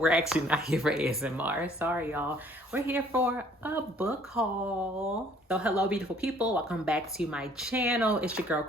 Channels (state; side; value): normal; both; correlation 0.59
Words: actually not here for ASMR. Sorry, y'all. We're here for a book haul. So hello, beautiful people. Welcome back to my channel. It's your girl,